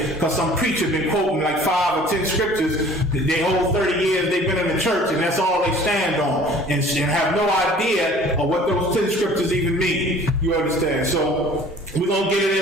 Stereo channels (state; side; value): normal; both; correlation 0.49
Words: Because some preacher been quoting like 5 or 10 scriptures they whole 30 years they've been in the church, and that's all they stand on, and have no idea of what those 10 scriptures even mean. You understand? So we're going to get it